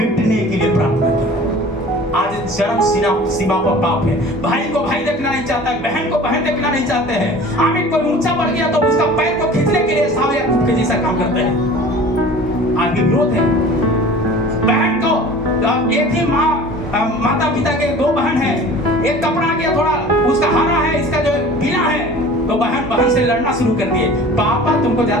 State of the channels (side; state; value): both; normal; correlation 0.43